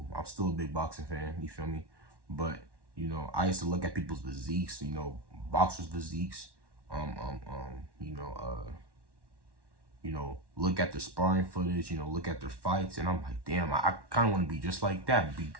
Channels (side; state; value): left; late; 1.1 ms